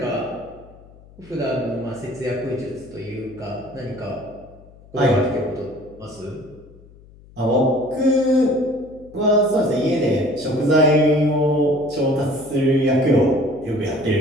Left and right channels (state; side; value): noise; left; hum, 24 dB below the sound